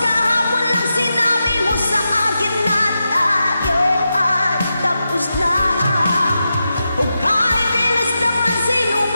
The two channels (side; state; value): both; inverted; correlation -0.89